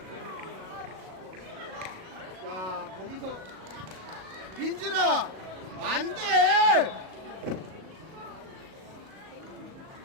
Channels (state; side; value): late; left; 37 ms